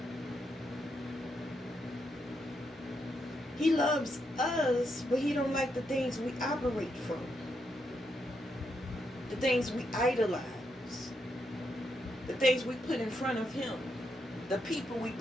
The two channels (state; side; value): normal; both; correlation 0.81